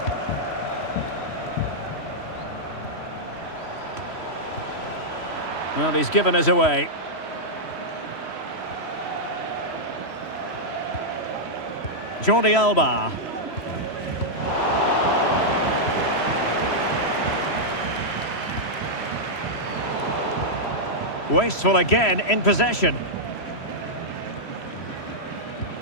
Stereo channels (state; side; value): late; right; 3.1 ms